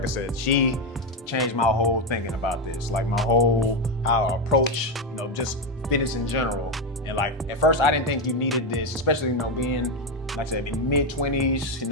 I said, she changed my whole thinking about this, like my whole how I approach, just fitness in general. And like at first I didn't think you needed this, especially being, like I said, in mid-20s,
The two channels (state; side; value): normal; both; correlation 0.09